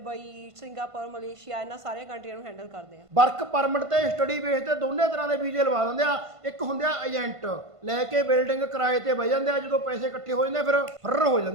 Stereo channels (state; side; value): late; left; 1.5 ms